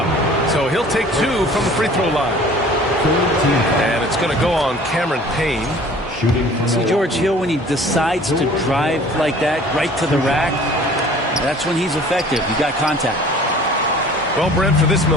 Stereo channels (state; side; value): normal; both; correlation 0.49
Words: So he'll take 2 from the free throw line. And it's going to go on Cameron Payne. See George Hill, when he decides to drive like that right to the rack, that's when he's effective. He got contact. Well, Brent, for this